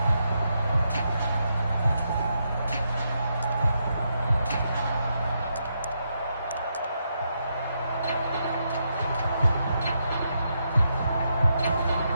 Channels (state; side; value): inverted; both; correlation -0.81